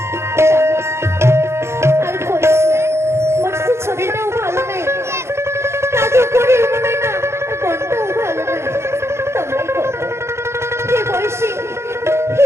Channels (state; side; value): late; left; 0.13 ms